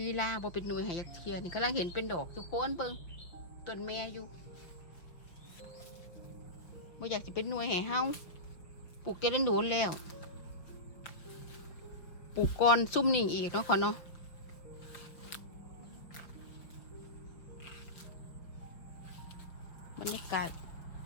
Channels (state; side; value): late; right; 5.9 ms